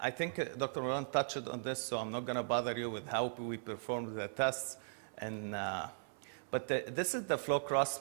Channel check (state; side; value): silent; left; 52 dB below the other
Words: think Dr. Marwan touched on this, so I'm not going to bother you with how we perform the tests. And, but this is the flow